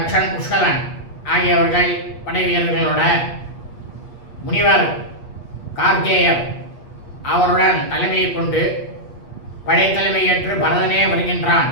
புஷ்கலன் ஆகியவர்கள் படை வீரர்களோட முனிவர் கார்கேயர் அவருடன் தலைமையை கொண்டு படைத்தலைமை ஏற்று பரதனே வருகின்றான்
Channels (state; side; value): late; right; 8.4 ms